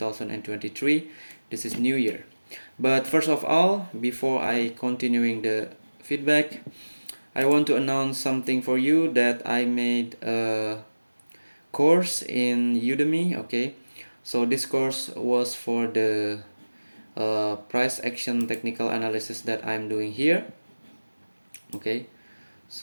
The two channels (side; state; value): both; inverted; correlation -1.00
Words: This is New Year. But first of all, before I continuing the feedback, I want to announce something for you that I made a course in Udemy. Okay, so this course was for the price action technical analysis that I'm doing here. Okay,